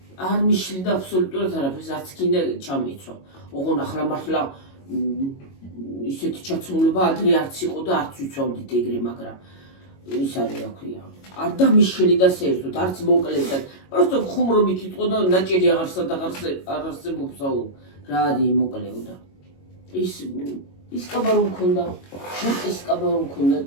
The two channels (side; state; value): right; late; 22 ms